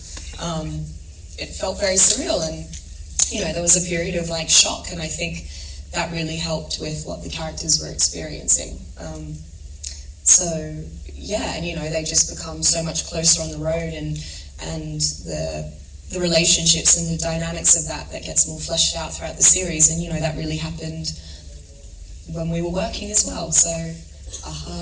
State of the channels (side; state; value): both; identical; correlation 1.00